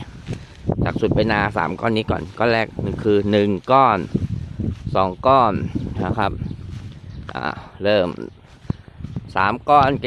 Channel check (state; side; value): identical; both; correlation 1.00